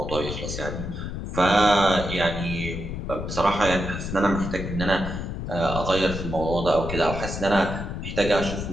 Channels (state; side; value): noise; left; rumble, 5 dB below the sound